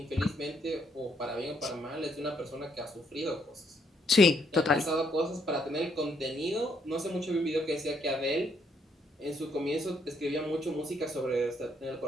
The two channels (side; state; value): both; normal; correlation 0.72